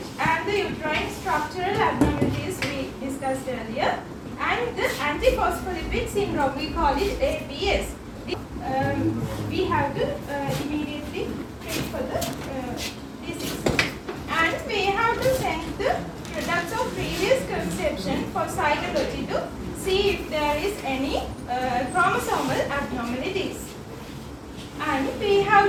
And the uterine structural abnormalities we discussed earlier. And the antiphospholipid syndrome, we call it APS. We have to immediately treat for the disease. And we have to send the products of previous conception for cytology to see if there is any chromosomal abnormalities. And we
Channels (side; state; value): both; identical; correlation 1.00